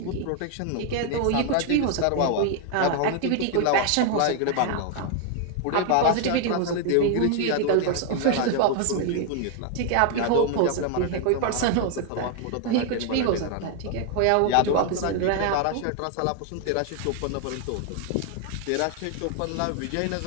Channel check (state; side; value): different; both; correlation 0.00